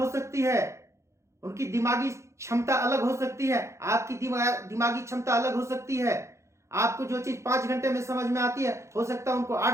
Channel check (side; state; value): left; late; 0.14 ms